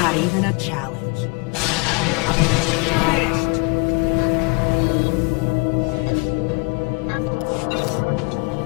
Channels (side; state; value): right; quieter; 29.2 dB